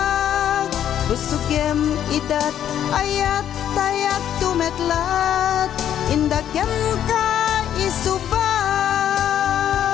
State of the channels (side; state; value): right; quieter; 10.3 dB